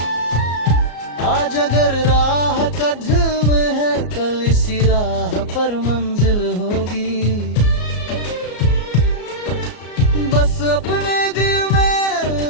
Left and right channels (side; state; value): right; late; 34 ms